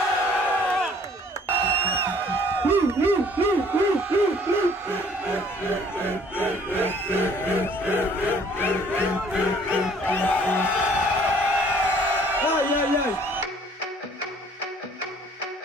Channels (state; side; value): normal; both; correlation 0.57